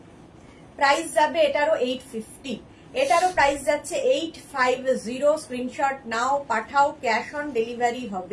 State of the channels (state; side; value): identical; both; correlation 1.00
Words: প্রাইস যাবে এটারও 850। এটারও প্রাইস যাচ্ছে 850। স্ক্রিনশট নাও, পাঠাও, ক্যাশ অন ডেলিভারি